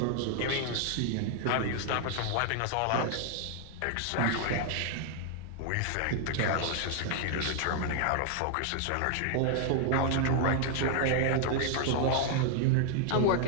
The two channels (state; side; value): different; both; correlation 0.00